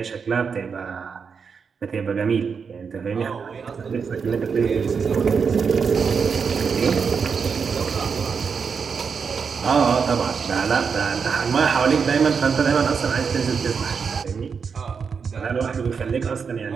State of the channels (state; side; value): quieter; left; 5.9 dB